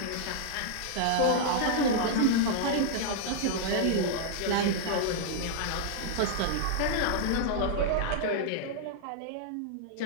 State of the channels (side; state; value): both; different; correlation -0.01